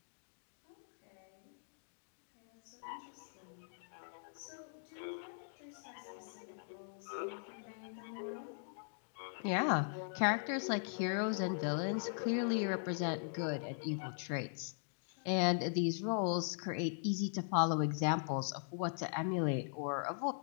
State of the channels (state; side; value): silent; right; digital silence